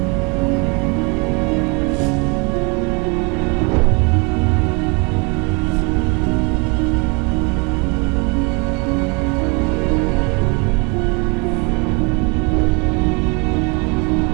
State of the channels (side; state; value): left; quieter; 30.1 dB